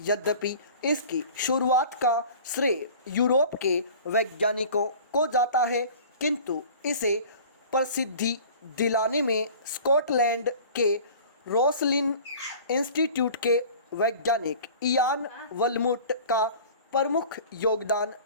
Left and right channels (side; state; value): both; inverted; correlation -0.43